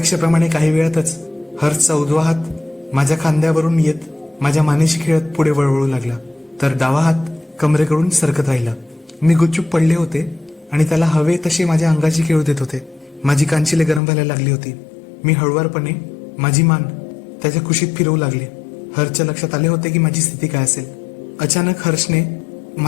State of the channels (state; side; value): drops out; right; at 14.0 s